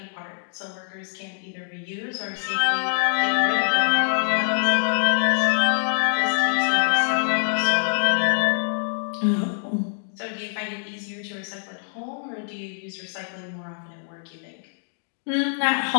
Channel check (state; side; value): silent; right; digital silence